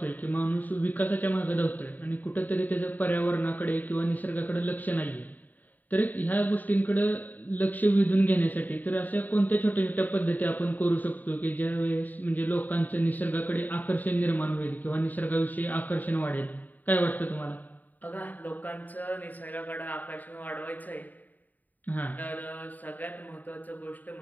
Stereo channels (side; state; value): right; late; 0.084 ms